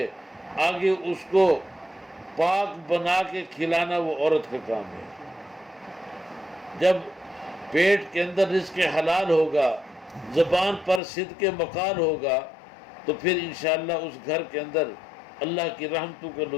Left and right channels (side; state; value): right; drops out; at 11.0 s